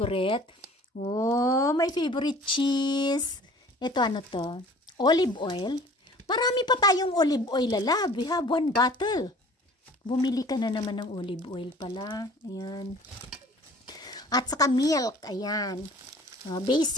Oh, my favorite cheese. Ito, ano to? Olive oil. Marami pa tayong olive oil, lalab. We have 1 bottle. Bumili ka na naman ng olive oil pala. Ayan. At saka milk. Ayan.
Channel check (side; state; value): both; normal; correlation 0.49